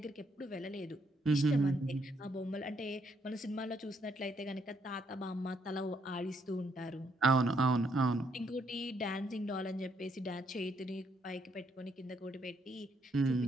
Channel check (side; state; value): both; normal; correlation 0.73